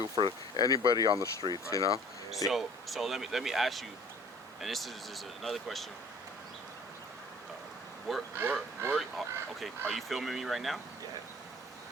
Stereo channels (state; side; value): normal; both; correlation 0.49